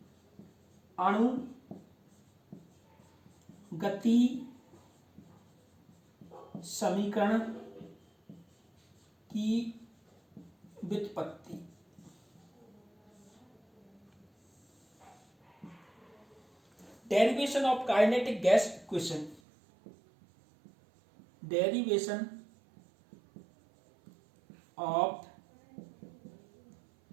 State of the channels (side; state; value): left; drops out; at 19.4 s